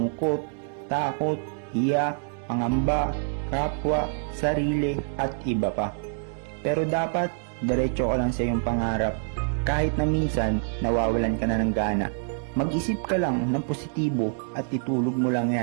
takot, hiya, pangamba, kapwa, sarili at iba pa. Pero dapat diretso ka lang sa iyong pangarap. Kahit na minsan nawawalan ka na ng gana. Mag-isip ka lang ng positibo at itulog mo lang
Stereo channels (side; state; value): left; silent; 61 dB below the other